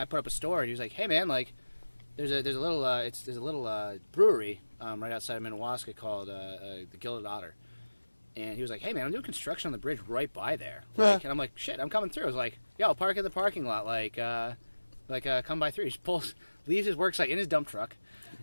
put up a store, and he was like, "Hey man, like, there's a little brewery right outside of Minnewaska called the Gilded Otter." And he was like, "Hey man, I'm doing construction on the bridge right by there." Like, and I'm like, "Shit, I'm coming through." I was like, "Yo, I'll park in the parking lot. Come by through." He just leaves his work site in his dump truck,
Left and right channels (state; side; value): inverted; both; correlation -1.00